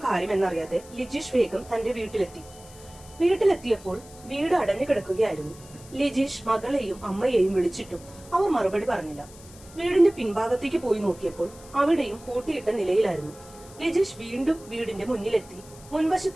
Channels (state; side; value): noise; left; hiss, 21 dB below the sound